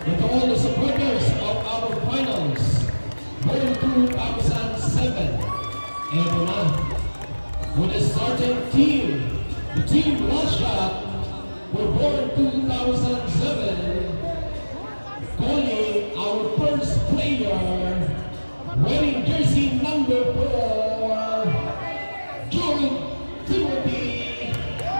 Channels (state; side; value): inverted; both; correlation -1.00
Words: and to all the supporters of our finals World 2007. Eto na, with the starting team, the team Russia were born 2007, calling our first player, wearing jersey number 4, Jude Timothy,